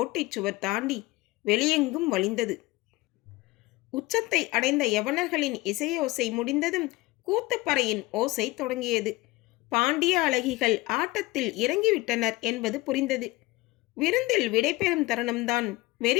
சுவர் தாண்டி வெளியெங்கும் வழிந்தது. உச்சத்தை அடைந்த யவனர்களின் இசையோசை முடிந்ததும் கூத்துப்பறையின் ஓசை தொடங்கியது. பாண்டிய அழகிகள் ஆட்டத்தில் இறங்கிவிட்டனர் என்பது புரிந்தது. விருந்தில் விடைபெறும் தருணம்தான்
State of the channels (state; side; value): quieter; right; 20.3 dB